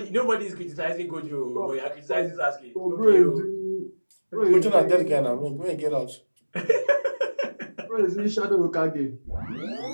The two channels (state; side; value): inverted; both; correlation -1.00